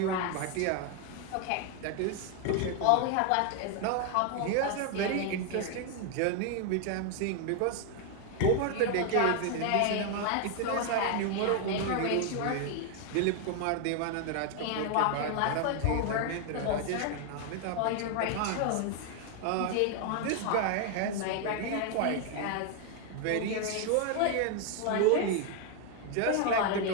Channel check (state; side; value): different; both; correlation 0.00